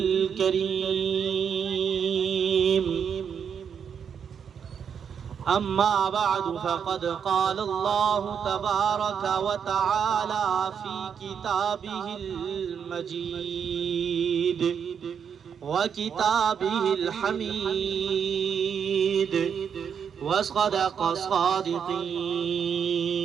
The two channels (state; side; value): quieter; left; 7.4 dB